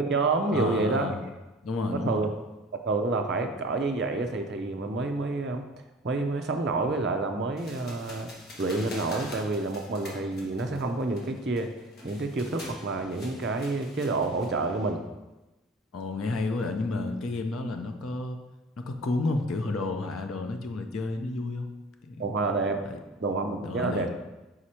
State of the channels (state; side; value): normal; both; correlation 0.42